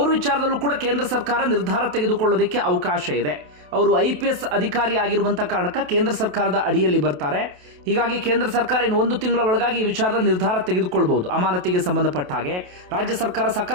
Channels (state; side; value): late; left; 28 ms